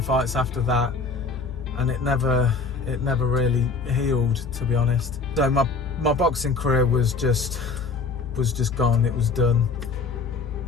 fights after that, and it never really healed, to be honest. So my boxing career was just gone, it was done.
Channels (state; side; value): quieter; right; 4.3 dB